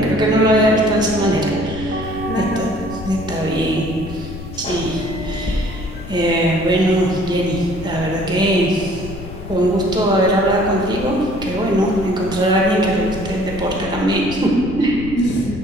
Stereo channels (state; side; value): noise; left; rumble, 12 dB below the sound